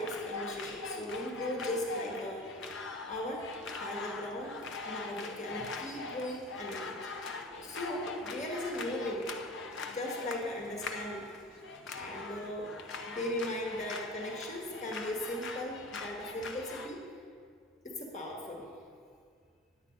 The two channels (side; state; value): both; normal; correlation 0.35